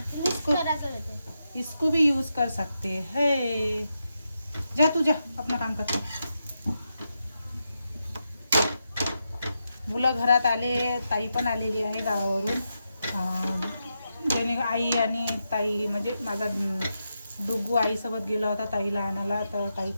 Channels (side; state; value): both; inverted; correlation -0.86